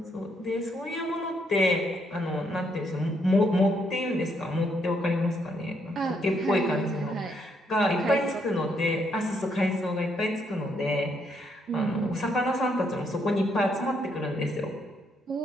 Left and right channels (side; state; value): both; normal; correlation 0.74